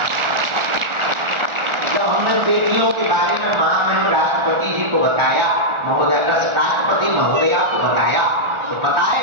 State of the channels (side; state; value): left; late; 1.4 ms